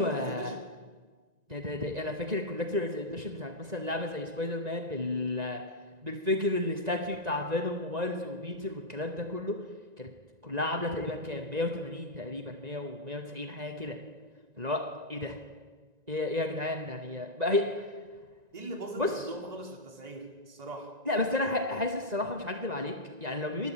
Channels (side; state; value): left; late; 1.9 ms